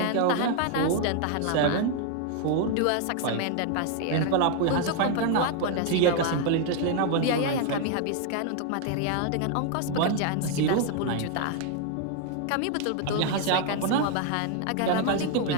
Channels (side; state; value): both; different; correlation 0.00